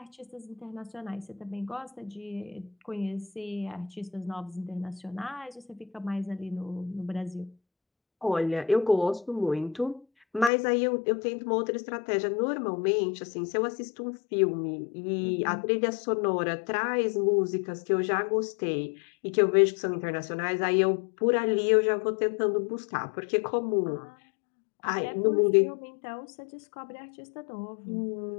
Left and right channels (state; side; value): drops out; right; at 10.5 s